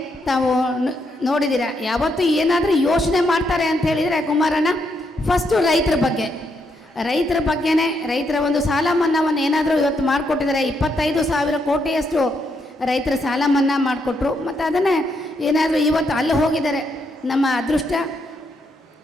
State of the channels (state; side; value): normal; both; correlation 0.78